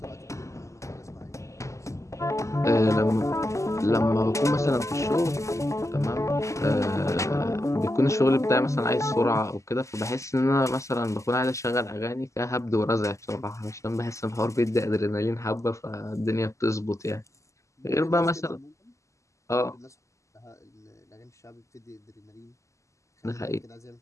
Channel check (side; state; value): right; late; 0.15 ms